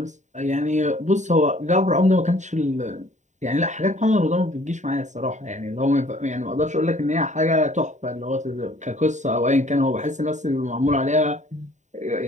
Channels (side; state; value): left; late; 0.34 ms